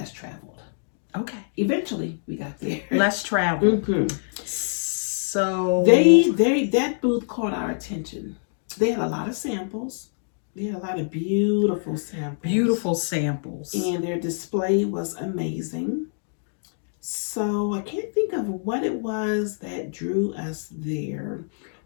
Traveled. Okay. Eventually we got there. Less Traveled. So that booth caught our attention. They had a lot of samples. They had a lot of beautiful samples. And their display was amazing. So I can't think of what it was that drew us there.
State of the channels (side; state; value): right; silent; digital silence